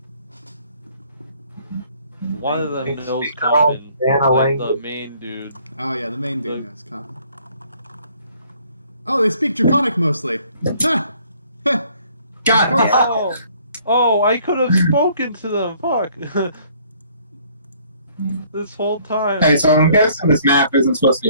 One of them They knows speak their own common, Banner like the language. main dude. Oh yeah, the main dude knows common. Oh, they speak Draconic mostly. Ha! Ha! God, Of course. Oh, I could have spoken to them. Fuck. This whole time. Okay, so I'm guessing this map isn't supposed to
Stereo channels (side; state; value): both; inverted; correlation -0.61